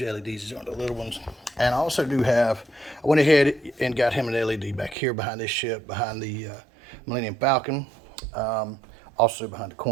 LEDs. These aren't the little ones. And I also do have, I went ahead and got him an LED back here behind this ship, behind the Millennium Falcon. Also behind the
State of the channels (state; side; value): drops out; left; at 5.0 s